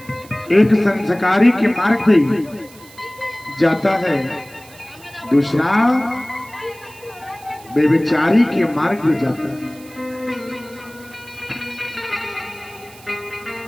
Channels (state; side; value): noise; right; hiss, 22 dB below the sound